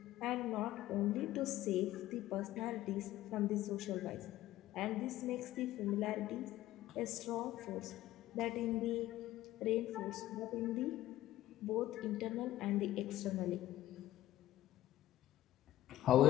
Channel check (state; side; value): quieter; right; 14.4 dB